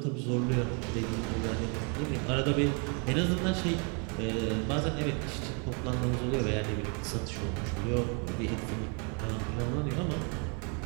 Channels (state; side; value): quieter; left; 36.2 dB